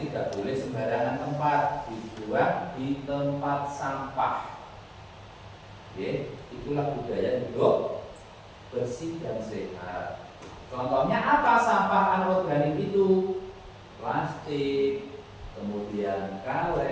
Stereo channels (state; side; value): identical; both; correlation 1.00